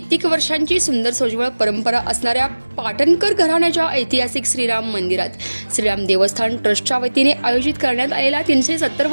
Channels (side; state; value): both; inverted; correlation -1.00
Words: वर्षांची सुंदर सोज्वळ परंपरा असणाऱ्या पाटणकर घराण्याच्या ऐतिहासिक श्रीराम मंदिरात श्रीराम देवस्थान ट्रस्टच्या वतीने आयोजित करण्यात आलेला